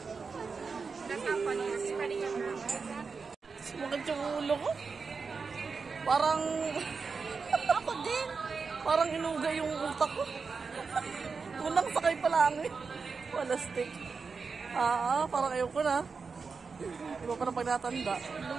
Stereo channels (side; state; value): left; quieter; 4.9 dB